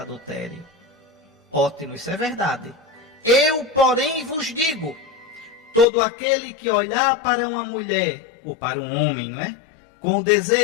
Ótimo, isso é verdade. Eu, porém, vos digo, todo aquele que olhar para uma mulher, ou para um homem, não é? Com o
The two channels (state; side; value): drops out; right; at 5.9 s